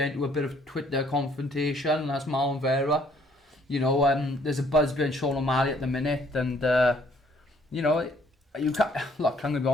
into a bit of Twitter confrontation, and that's Marlon Vera. There's a buzz behind Sean O'Malley at the minute, and you can't. Look, I'm gonna be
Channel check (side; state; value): both; normal; correlation 0.63